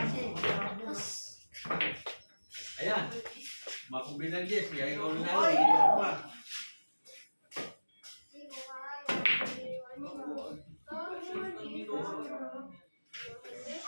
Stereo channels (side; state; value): both; inverted; correlation -1.00